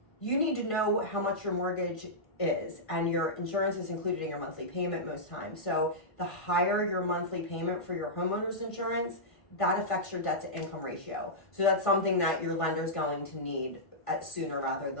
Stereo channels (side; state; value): right; late; 1.5 ms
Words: You need to know how much your mortgage is, and your insurance is included in your monthly payment most times. So the higher your monthly payment for your homeowner's insurance, that affects your debt to income ratio. So that's something that your lender's going to need sooner rather